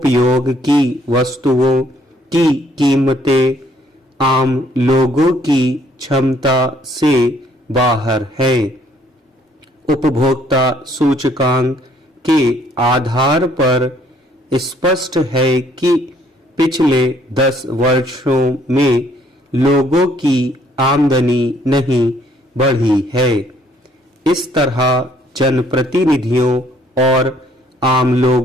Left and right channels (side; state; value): both; normal; correlation 0.65